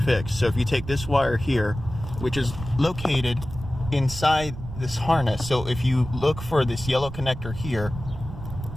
So if you take this wire here, which is located inside this harness, so if you look for this yellow connector here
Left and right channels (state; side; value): noise; right; rumble, 10 dB below the sound